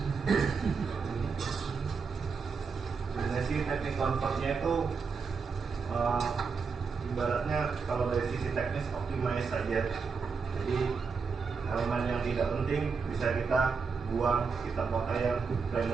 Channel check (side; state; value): left; quieter; 5.2 dB